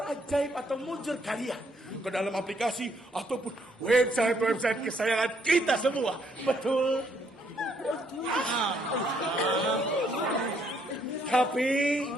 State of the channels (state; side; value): normal; both; correlation 0.70